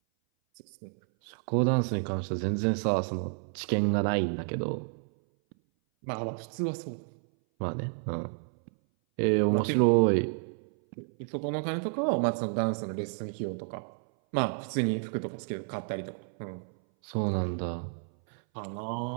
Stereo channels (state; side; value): silent; left; 57 dB below the other